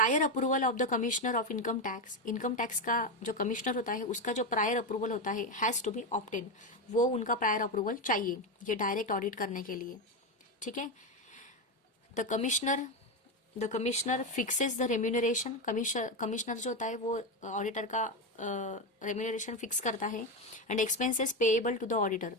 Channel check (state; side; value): normal; both; correlation 0.12